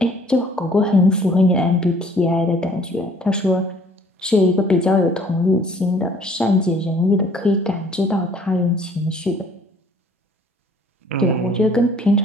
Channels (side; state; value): both; normal; correlation 0.57